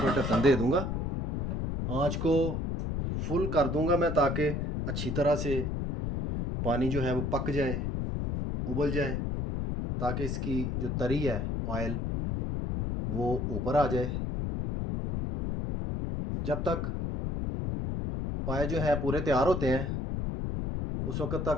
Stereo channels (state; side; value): noise; left; rumble, 2 dB below the sound